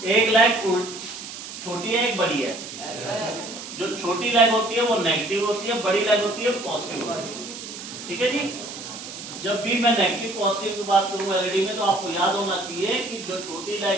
एक लेग छोटी है एक बड़ी है। जो छोटी लेग होती है वो नेगेटिव होती है, बड़ी लेग होती है पॉजिटिव होती है। ठीक है जी। जब भी मैं नेगेटिव पॉजिटिव की बात करूं एलईडी में तो आपको याद होना चाहिए कि जो छोटी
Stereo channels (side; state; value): right; noise; hiss, 11 dB below the sound